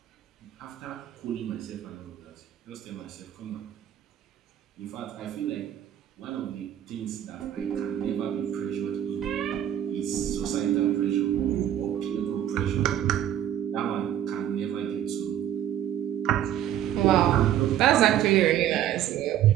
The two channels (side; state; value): left; quieter; 11.3 dB